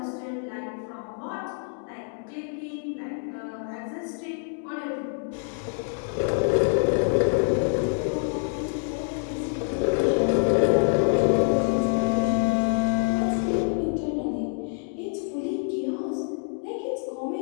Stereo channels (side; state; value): right; silent; 61 dB below the other